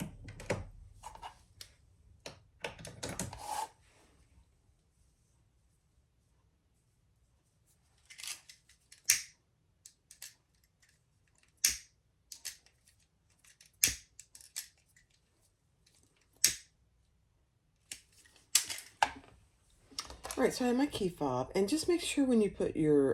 All right, so I have my key fob, and just make sure when you put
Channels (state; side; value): identical; both; correlation 1.00